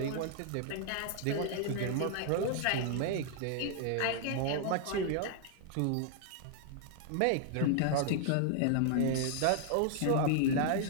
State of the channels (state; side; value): different; both; correlation 0.00